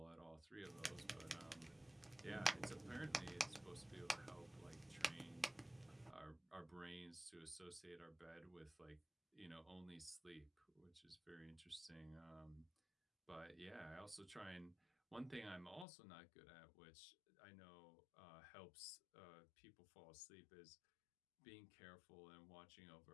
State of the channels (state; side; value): drops out; right; at 15.9 s